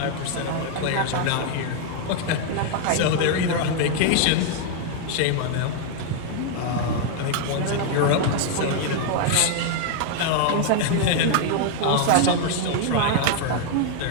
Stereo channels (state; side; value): different; both; correlation 0.00